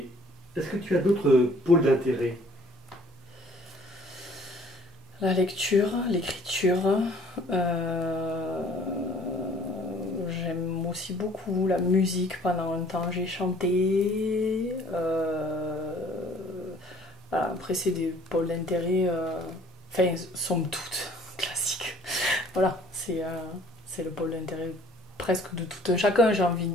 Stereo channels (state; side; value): normal; both; correlation 0.55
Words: est-ce que tu as d'autres pôles d'intérêt? La lecture, l'écriture. euh, J'aime aussi beaucoup la musique. Pendant un temps, j'ai chanté. Voilà, après, c'est des pôles d'intérêt. Enfin, somme toute, classiques. Voilà, c'est le pôle d'intérêt presque de tout un chacun, j'ai envie de